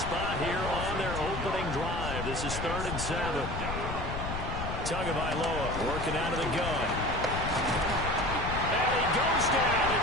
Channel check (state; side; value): noise; left; rumble, 5 dB below the sound